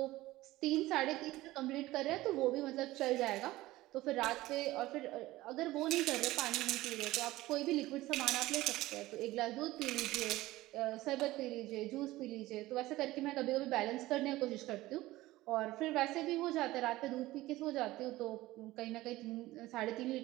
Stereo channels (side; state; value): left; quieter; 17.6 dB